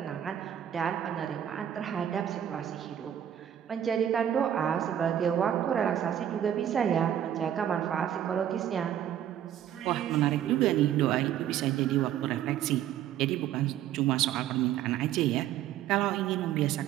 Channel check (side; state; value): left; quieter; 10.5 dB